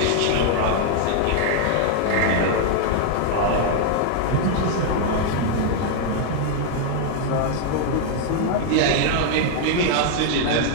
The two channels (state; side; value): different; both; correlation 0.00